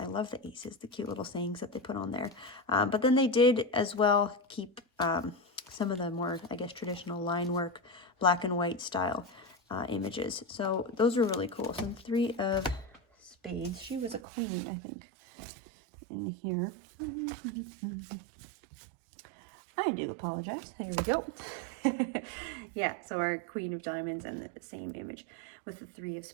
love the aces, the cute little sayings that they put on there. But then they did as well keep some of the more, I guess, traditional line work, black and white style images. So those were really cool. So Three of Spades, she was a queen, I think, in here. I do apologize. There we go. Yeah, so our Queen of Diamonds and the same image with the Three of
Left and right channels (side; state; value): left; drops out; at 14.2 s